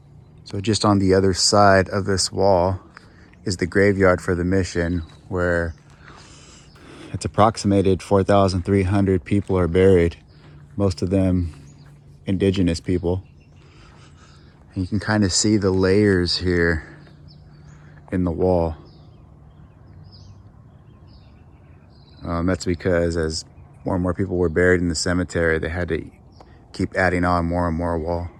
So just on the other side of this wall is the graveyard for the mission, where it's approximated 4,300 people are buried, most of them indigenous people. And you can kind of see the layers here in the wall. That's because as more and more people were buried in the cemetery, they had to keep adding on more and more wall.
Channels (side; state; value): both; identical; correlation 1.00